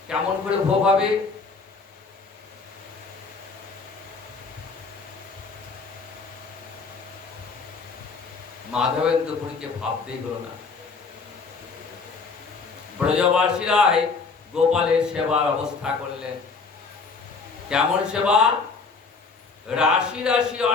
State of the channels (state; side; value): quieter; right; 4.5 dB